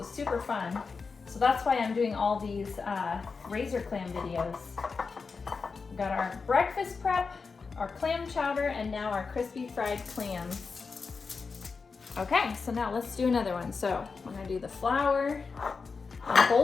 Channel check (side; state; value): right; quieter; 4.8 dB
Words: was super fun. So that's why I'm doing all these razor clam videos. We've got our breakfast prep, our clam chowder, and now our crispy fried clams. Okay, so now let's do another one. So we're gonna do the flour on